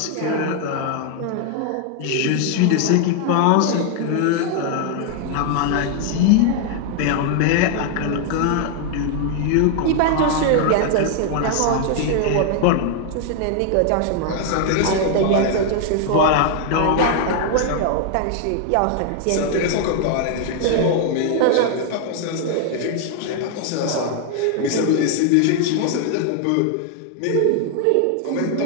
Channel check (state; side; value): different; both; correlation 0.00